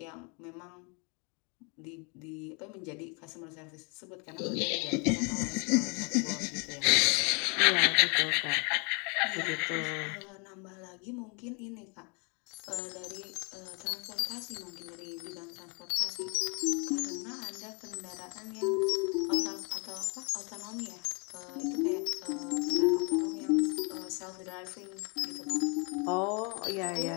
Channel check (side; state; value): right; quieter; 34.3 dB